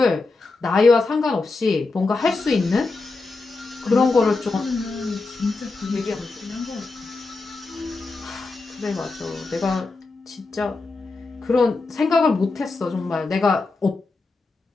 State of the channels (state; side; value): quieter; right; 3.7 dB